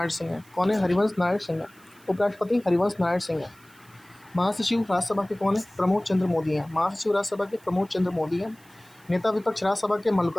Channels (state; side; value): noise; right; hiss, 28 dB below the sound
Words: सिंह है। कौन है? हरिवंश नारायण सिंह है। उपराष्ट्रपति हरिवंश नारायण सिंह है। महासचिव राज्यसभा के कौन है? प्रमोद चंद्र मोदी हैं। नेता विपक्ष राज्यसभा के